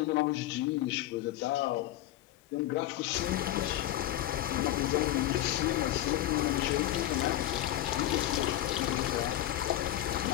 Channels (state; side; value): quieter; right; 13.8 dB